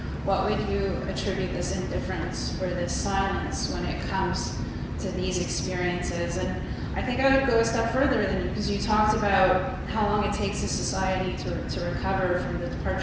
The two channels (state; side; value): identical; both; correlation 1.00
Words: what would you attribute this indifference or this silence when it comes to these experiences? And I think I would go a step further than you, because you talked about how long it takes a society to recover from the